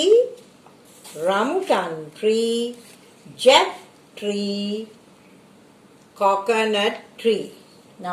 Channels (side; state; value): both; identical; correlation 1.00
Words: rambutan tree, jack tree, coconut tree.